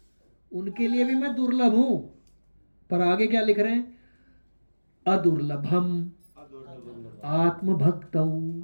उनके लिए भी मैं दुर्लभ हूं। पर आगे क्या लिख रहे हैं? अदुर्लभम आत्मभक्तौ।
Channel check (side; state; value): both; inverted; correlation -1.00